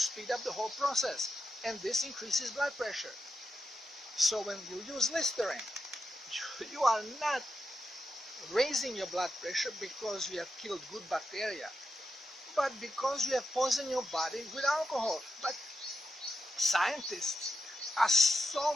up the whole process, and this increases blood pressure. So when you use Listerine, You are not raising your blood pressure because you have killed good bacteria, but because you have poisoned your body with alcohol. But scientists are so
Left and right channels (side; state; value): both; normal; correlation 0.86